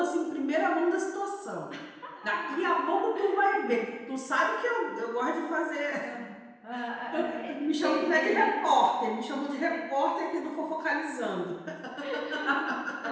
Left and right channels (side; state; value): both; identical; correlation 1.00